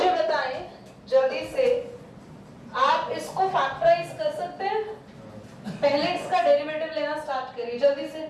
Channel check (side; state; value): both; identical; correlation 1.00